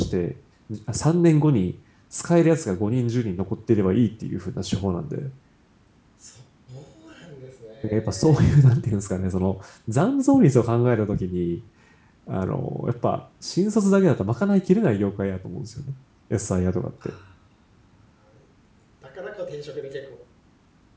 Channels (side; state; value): both; identical; correlation 1.00